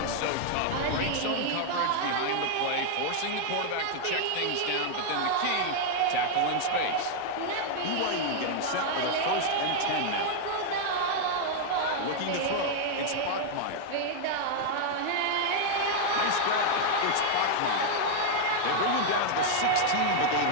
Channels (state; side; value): different; both; correlation 0.00